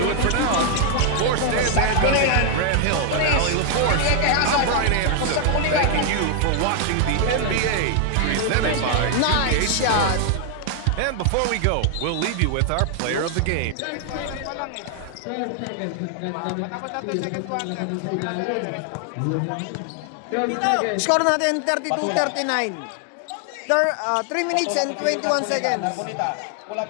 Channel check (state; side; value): different; both; correlation 0.00